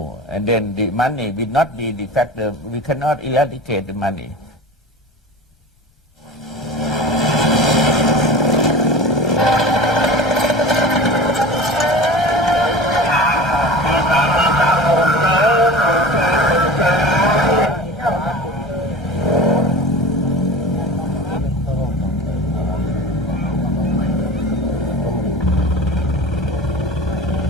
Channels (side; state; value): both; normal; correlation 0.34